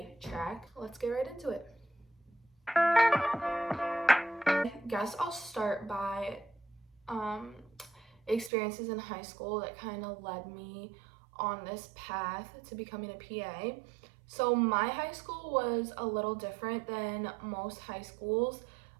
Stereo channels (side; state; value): left; drops out; at 8.5 s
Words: track. Let's get right into it. I guess I'll start by experiences in high school that kind of led me on this path to becoming a PA. So my high school was a little different than most high schools.